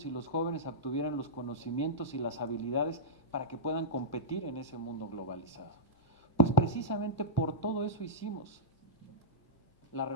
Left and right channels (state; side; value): normal; both; correlation -0.13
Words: y los jóvenes obtuvieran los conocimientos y las habilidades para que puedan competir en ese mundo globalizado? Pues precisamente por todo eso hicimos la